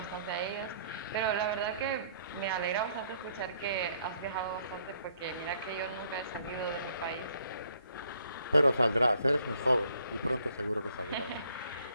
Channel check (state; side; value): inverted; both; correlation -0.65